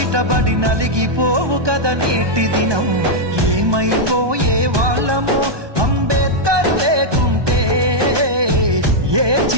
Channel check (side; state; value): left; late; 1.2 ms